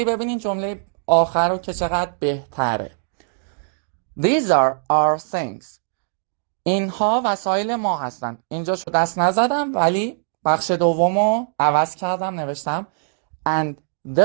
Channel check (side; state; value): left; silent; digital silence